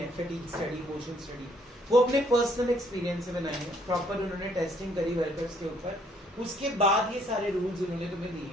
फैटीग स्टडी, मोशन स्टडी, वो अपने पर्सनल एक्सपीरियंस से बनाई है. प्रॉपर उन्होंने टेस्टिंग करी वर्कर्स के ऊपर. उसके बाद ये सारे रूल्स उन्होंने तुम्हें दिए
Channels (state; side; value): normal; both; correlation 0.66